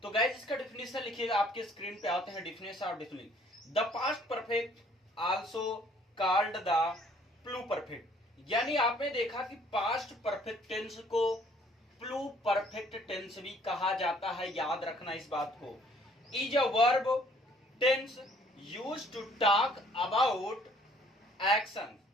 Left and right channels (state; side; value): normal; both; correlation 0.59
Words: तो गाइज इसका डेफिनेशन लिखिएगा। आपके स्क्रीन पे आते हैं definition of definition. The past perfect also called the pluperfect, यानी आपने देखा कि पास्ट परफेक्ट टेंस को प्लू परफेक्ट टेंस भी कहा जाता है। याद रखना इस बात को। Is a verb tense used to talk about action